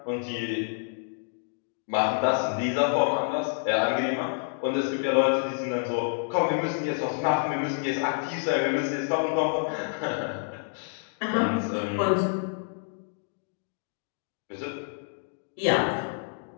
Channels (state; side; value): silent; right; 59 dB below the other